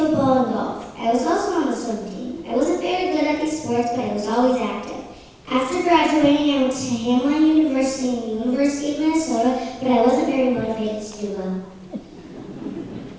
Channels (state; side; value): identical; both; correlation 1.00